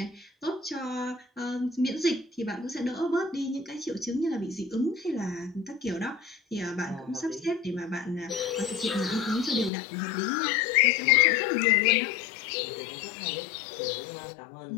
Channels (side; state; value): right; drops out; at 9.7 s